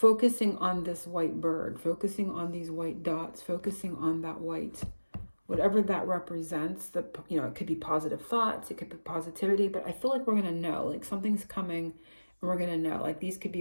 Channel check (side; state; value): both; inverted; correlation -1.00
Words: on this white bird, focusing on these white dots, focusing on that white, whatever that represents. It could be positive thoughts, it could be positivity, but I feel like we're going to know, like something's coming and we're going to know. Like these could